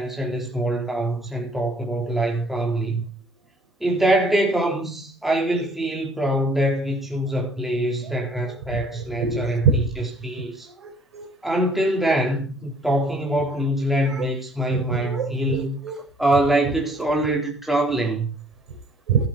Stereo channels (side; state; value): both; normal; correlation 0.58